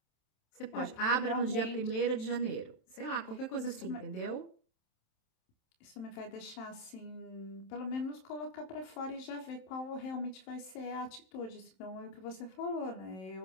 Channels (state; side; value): late; right; 27 ms